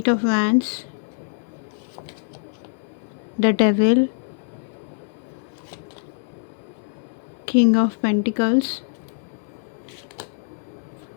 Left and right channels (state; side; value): silent; right; digital silence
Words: of Wands, the Devil, King of Pentacles,